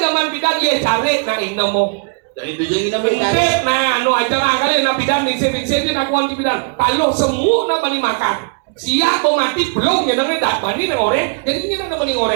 zaman bidan iya cari nah ini mau. Dari tujuan kita Intip, nah, no aja lah kali nak bidan ningsir dia nak kuanti bidan. Kalau semua nak bani makan. Siap mau mati belum ya nanti tak bani nih orang. Jadi ini nak bani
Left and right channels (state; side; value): quieter; left; 39.2 dB